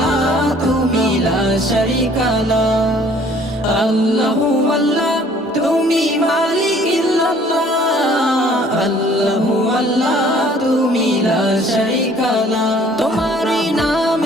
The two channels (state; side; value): normal; both; correlation 0.56